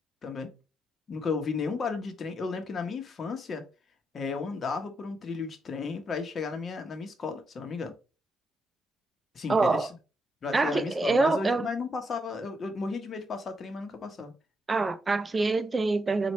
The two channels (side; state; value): both; normal; correlation 0.81